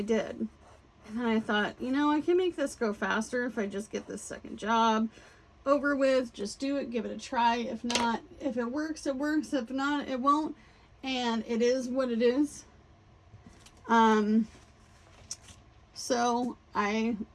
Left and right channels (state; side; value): identical; both; correlation 1.00